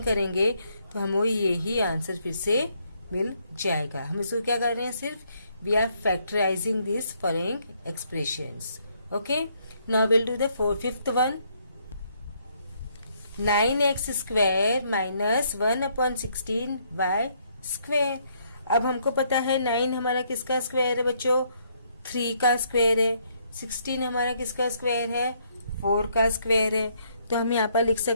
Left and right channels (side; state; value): both; inverted; correlation -0.70